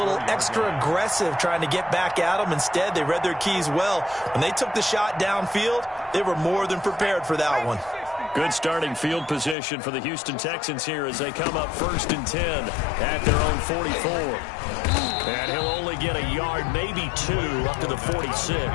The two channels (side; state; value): right; drops out; at 9.6 s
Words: extra aggressive trying to get back at them. Instead, they read their keys well. When they took the shot downfield, they were more than prepared for that one. Good starting field position for the Houston Texans here as they come up 1st and 10 at their own 44. And he'll only get a yard, maybe 2, up to the